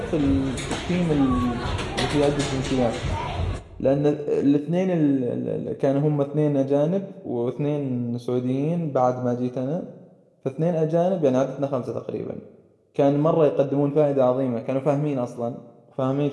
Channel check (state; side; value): identical; both; correlation 1.00